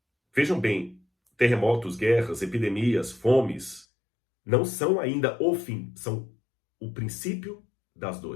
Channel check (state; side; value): drops out; right; at 3.9 s